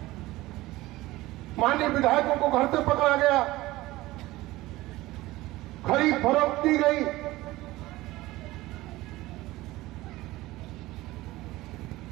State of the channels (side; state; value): left; quieter; 18.4 dB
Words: माननीय विधायकों को घर से पकड़ा गया, खरीद फरोख्त की गई,